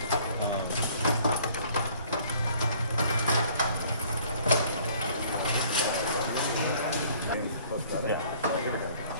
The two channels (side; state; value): both; inverted; correlation -0.56